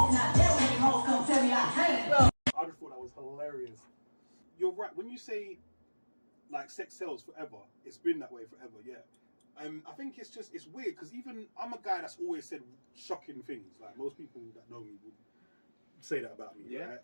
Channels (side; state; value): both; inverted; correlation -1.00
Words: Not there when these hoes come tell me I can't. I just thought that was hilarious. You're right. When you say, like, sex sells forever, it's been that way forever, yeah. I think it's weird because even I'm a guy that's always said shocking things. Like, most people that know me would say that about me. Yeah. Right?